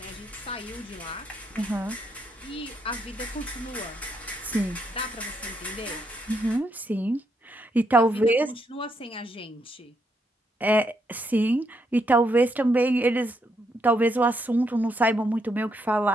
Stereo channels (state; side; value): normal; both; correlation 0.77